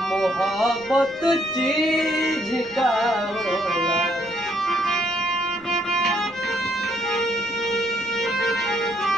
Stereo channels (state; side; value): noise; left; rumble, 26 dB below the sound